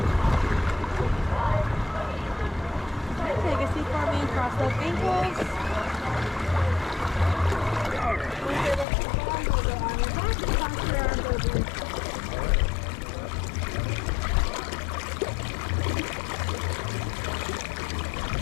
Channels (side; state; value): right; drops out; at 8.8 s